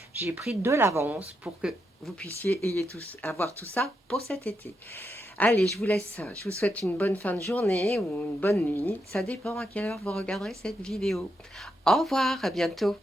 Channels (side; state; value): both; normal; correlation 0.82